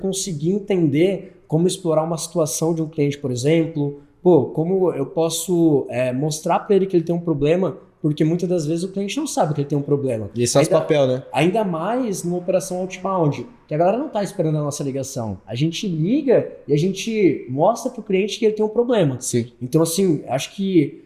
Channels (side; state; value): both; identical; correlation 1.00